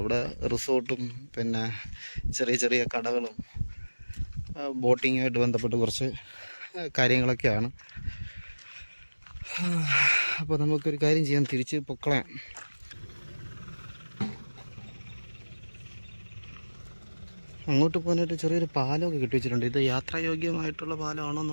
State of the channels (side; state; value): both; inverted; correlation -1.00